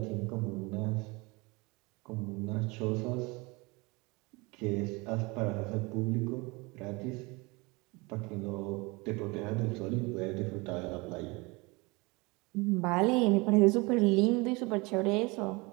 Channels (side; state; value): left; quieter; 25.9 dB